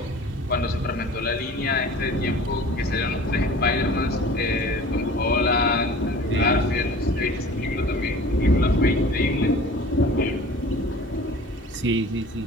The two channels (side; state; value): both; normal; correlation 0.43